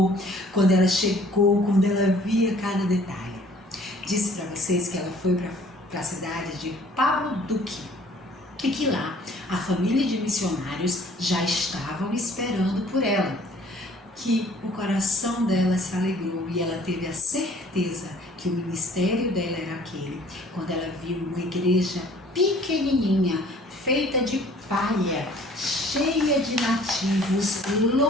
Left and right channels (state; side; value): normal; both; correlation 0.54